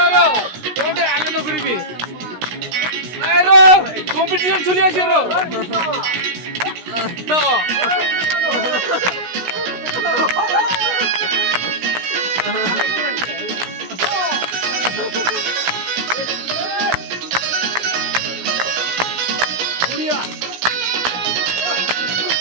রো তোতে আনন্দ করিবি এই রো কম্পিটিশন চলে আসে রো No.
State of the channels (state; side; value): late; left; 16 ms